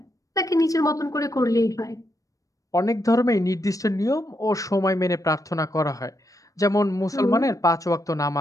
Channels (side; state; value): right; late; 0.16 ms